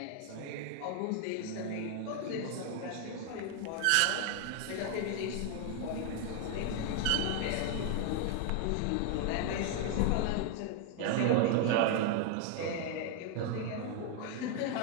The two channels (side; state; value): both; different; correlation 0.00